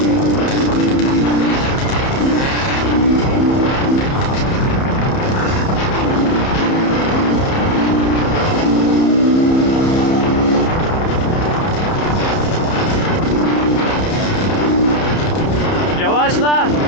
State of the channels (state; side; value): late; right; 30 ms